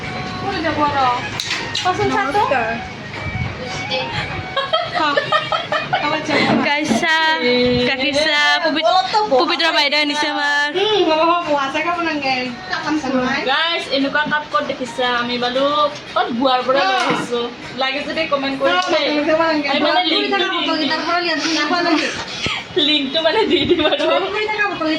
Kaisa, Kakisa, Pupitra বাইদেউ আনিছে আমাৰ গাইস এনেকুৱা কাপ ক'ত দেখিছা আমি বালু ক'ত বুৱাৰ পৰা লৈ আহিছো লাগে যদি কমেন্ট কৰি আমি মানে লিংকটো মানে দি দিম আৰু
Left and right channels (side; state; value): both; identical; correlation 1.00